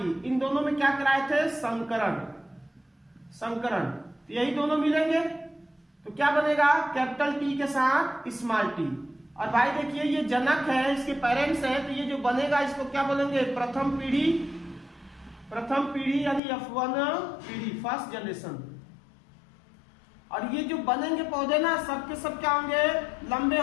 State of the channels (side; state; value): right; drops out; at 16.4 s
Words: इन दोनों में क्या कराए थे? संकरण। संकरण। यही दोनों मिलेंगे, तो क्या बनेगा, कैपिटल टी के साथ स्मॉल टी। और भाई देखिए ये जनक है, इसके पेरेंट्स है, तो ये जो बनेगा इसको क्या बोलेंगे, प्रथम पीढ़ी यानी F1 पीढ़ी, फर्स्ट जनरेशन। और ये जो बनेंगे पौधे ना सब के सब क्या होंगे, लंबे